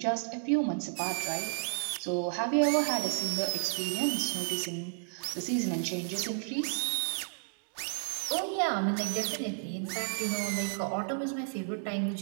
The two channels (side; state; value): left; silent; digital silence